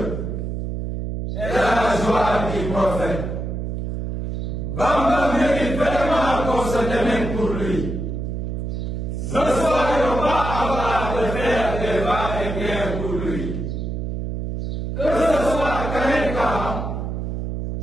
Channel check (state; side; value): noise; right; hum, 4 dB below the sound